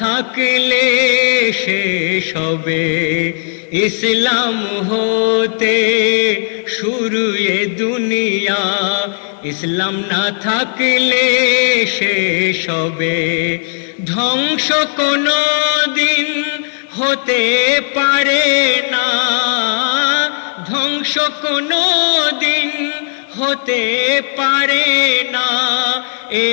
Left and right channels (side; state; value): right; silent; digital silence